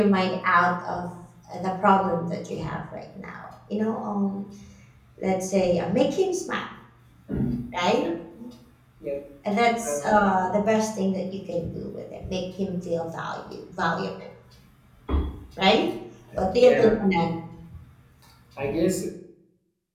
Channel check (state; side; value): identical; both; correlation 1.00